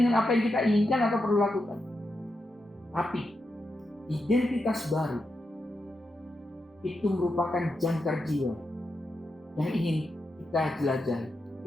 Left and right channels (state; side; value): normal; both; correlation 0.86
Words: dengan apa yang kita inginkan atau perlu lakukan. Tapi identitas baru itu merupakan jangkar jiwa yang ingin kita jelajahi.